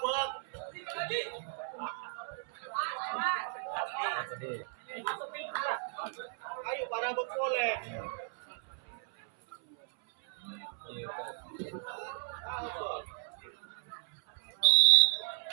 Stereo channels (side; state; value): left; silent; 55 dB below the other